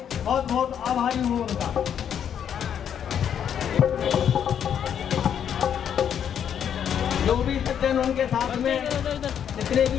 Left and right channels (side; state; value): right; quieter; 8.8 dB